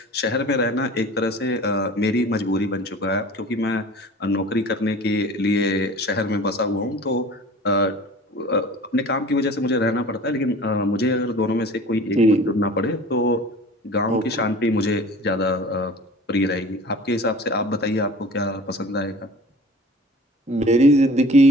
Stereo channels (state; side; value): normal; both; correlation 0.42